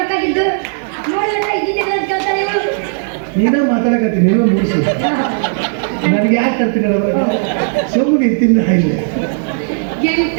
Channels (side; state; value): left; silent; digital silence